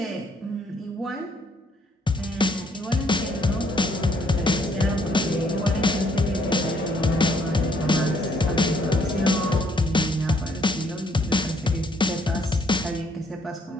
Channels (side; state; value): both; normal; correlation 0.67